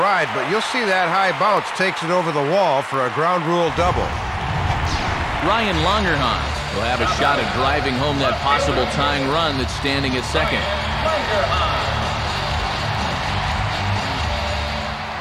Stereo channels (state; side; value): identical; both; correlation 1.00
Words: ride, but you'll see that high bounce takes it over the wall for a ground rule double. Ryan Longerhans will have a shot at driving home that possible tying run that's standing at second.